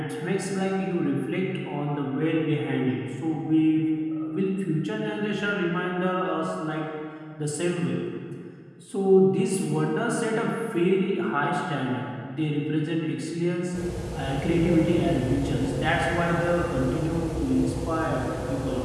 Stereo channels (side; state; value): both; identical; correlation 1.00